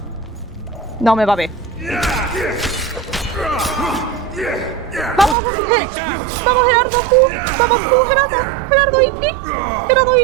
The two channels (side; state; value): left; drops out; at 5.4 s